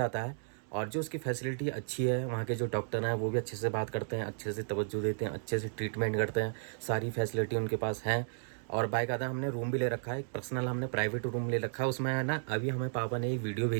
है और जो उसकी फैसिलिटी अच्छी है, वहाँ के जो डॉक्टर हैं वो भी अच्छे से बात करते हैं, अच्छे से तवज्जो देते हैं, अच्छे से ट्रीटमेंट करते हैं, सारी फैसिलिटी उनके पास हैं। और बाकायदा हमने रूम भी ले रखा है, एक पर्सनल हमने प्राइवेट रूम ले रखा है। उसमें है ना, अभी हमें पापा ने एक वीडियो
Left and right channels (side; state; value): left; silent; digital silence